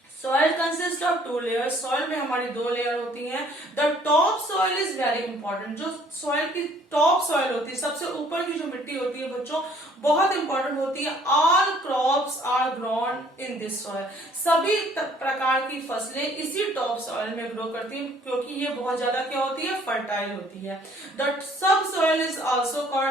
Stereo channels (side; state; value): both; normal; correlation 0.59